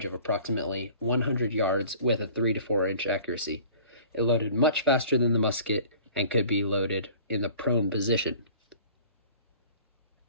of approximately 100 yards with a 3 to 4 inch accuracy. It loaded much faster than the musket and could be loaded in the prone position.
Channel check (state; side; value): inverted; both; correlation -0.47